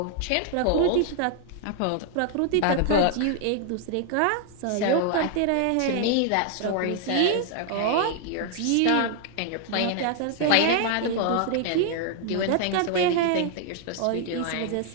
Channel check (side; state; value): both; different; correlation 0.00